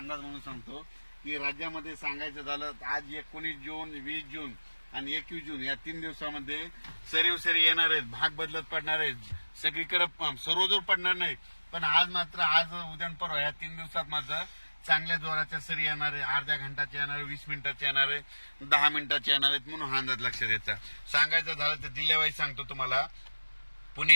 म्हणून सांगतो की राज्यामध्ये सांगायचं झालं आज 19 जून, 20 जून आणि 21 जून या 3 दिवसामध्ये सरी येणार आहेत. भाग बदलत पडणार आहेत. सगळीकडे सर्वदूर पडणार नाही, पण आज उद्या परवा या 3 दिवसात मात्र चांगल्या जोराच्या सरी येणार आहे. अर्ध्या घंटाच्या येणार आहे, 20 मिनिटाच्या येणार आहे, 10 मिनिटाच्या येणार आहेत. म्हणून हा अंदाज लक्षात द्यायचा. सांगायचं झालं तर जिल्ह्यावाईज सांगतो तुम्हाला. पुणे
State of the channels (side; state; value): both; inverted; correlation -1.00